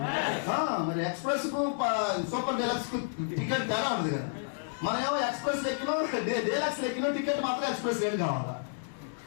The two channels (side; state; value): right; silent; digital silence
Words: మరి ఎక్స్ప్రెస్ కు సూపర్ డీలక్స్ కు టికెట్ తేడా ఉండదు కదా. మనం ఏమో ఎక్స్ప్రెస్ లెక్కినో డీలక్స్ లెక్కినో టికెట్ మాత్రం ఎక్స్ప్రెస్ రేట్ కావాలా.